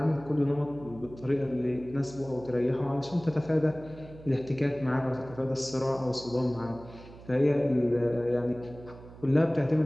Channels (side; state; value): right; noise; hum, 18 dB below the sound